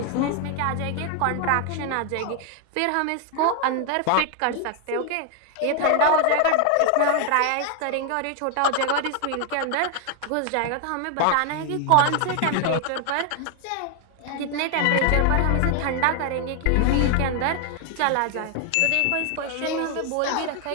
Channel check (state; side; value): different; both; correlation 0.01